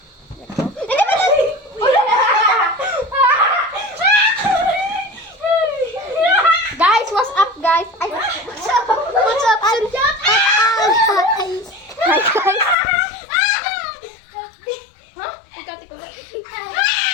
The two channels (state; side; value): drops out; right; at 12.8 s